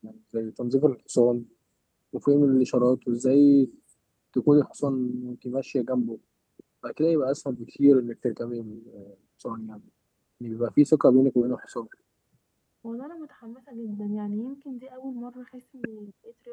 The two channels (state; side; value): identical; both; correlation 1.00